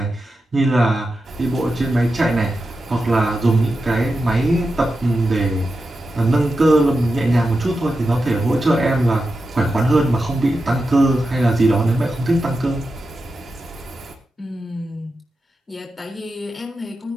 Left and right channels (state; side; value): normal; both; correlation 0.90